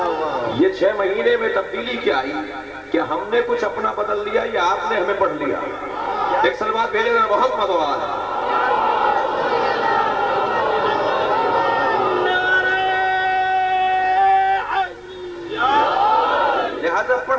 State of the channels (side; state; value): both; identical; correlation 1.00